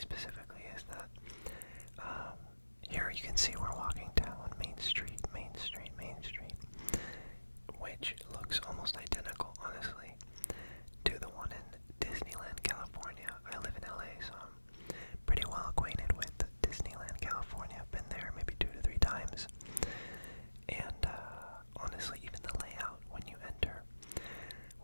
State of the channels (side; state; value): both; inverted; correlation -1.00